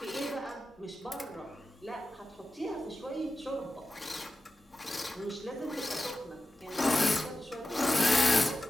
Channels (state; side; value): normal; both; correlation 0.93